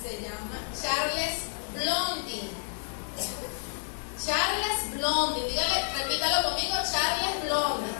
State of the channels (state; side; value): silent; right; 58 dB below the other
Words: Charles Blondin. Charles Blondin, dígale, repítalo conmigo, Charles Blondin.